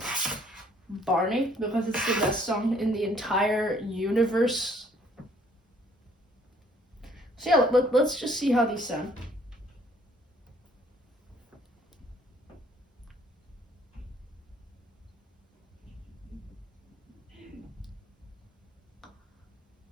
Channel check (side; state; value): both; normal; correlation 0.61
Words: Barney, because it's the best song in the entire universe. So yeah, let's just see how these sound.